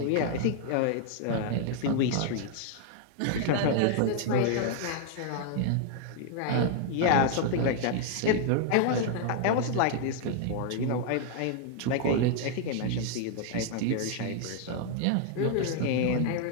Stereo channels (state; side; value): different; both; correlation 0.00